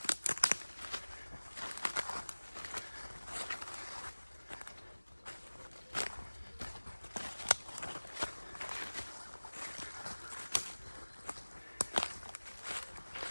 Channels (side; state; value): both; inverted; correlation -1.00